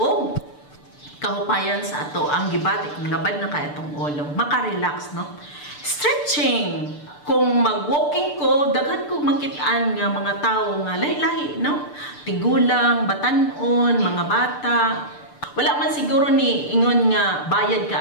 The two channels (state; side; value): late; right; 6.8 ms